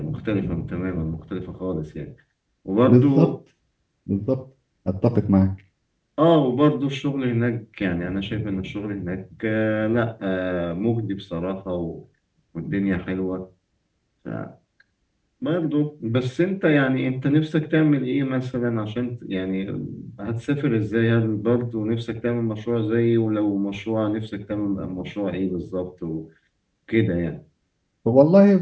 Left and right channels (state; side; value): identical; both; correlation 1.00